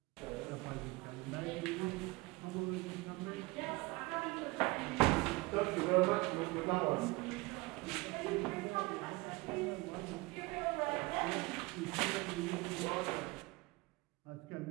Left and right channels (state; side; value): quieter; left; 24.0 dB